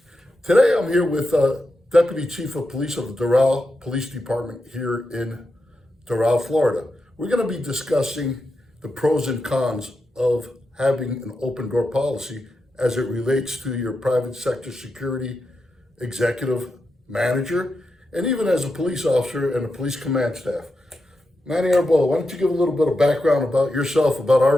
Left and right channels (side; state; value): both; normal; correlation 0.88